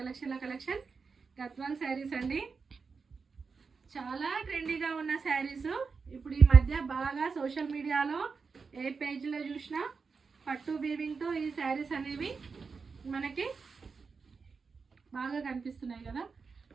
Gadwal saris అండి. చాలా ట్రెండీగా ఉన్న శారీస్ ఇప్పుడు ఈ మధ్య బాగా సోషల్ మీడియాలో ఏ పేజ్లో చూసినా పట్టు వీవింగ్తో ఈ శారీస్ అనేవి మనకి బాగా కనిపిస్తున్నాయి కదా.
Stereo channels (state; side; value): quieter; left; 5.0 dB